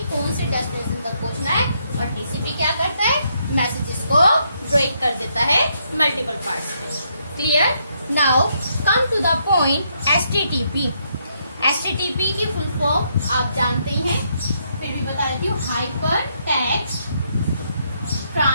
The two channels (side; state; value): both; inverted; correlation -0.75